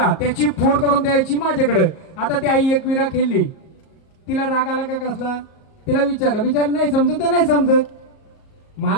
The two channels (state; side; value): late; right; 38 ms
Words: त्याची फोड करून द्यायची माझ्याकडे. आता ती आई एकविरा खेळली, तिला राग आला का कसला? तिला विचारलं नाही समजत तर नाही समजत.